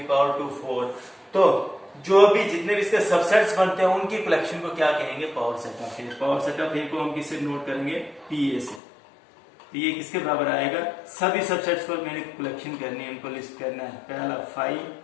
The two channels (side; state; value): right; drops out; at 8.8 s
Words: पावर 2 4। तो जो भी जितने भी इसके सबसेट्स बनते हैं उनकी कलेक्शन को क्या कहेंगे? Power set of A. Power set of A को हम किससे नोट करेंगे? पीए से। तो ये किसके बराबर आएगा? सभी सबसेट्स को मैंने कलेक्शन करनी है, उनको लिस्ट करना है। पहला